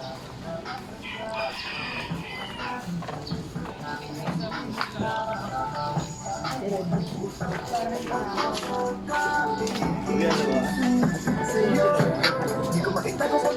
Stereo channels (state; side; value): identical; both; correlation 1.00